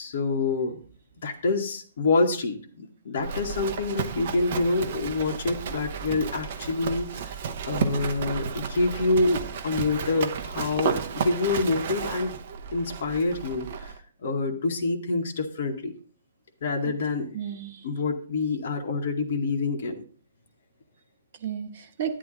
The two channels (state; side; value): inverted; both; correlation -0.61